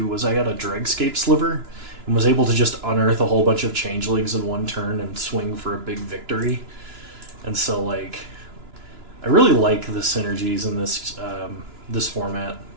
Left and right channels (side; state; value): left; late; 2.9 ms